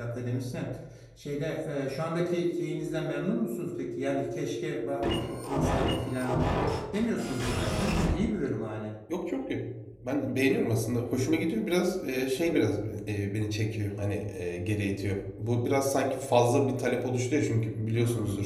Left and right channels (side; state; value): both; identical; correlation 1.00